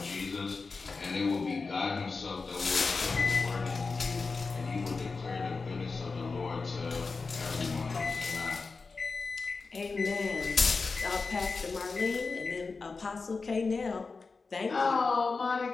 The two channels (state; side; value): quieter; right; 4.3 dB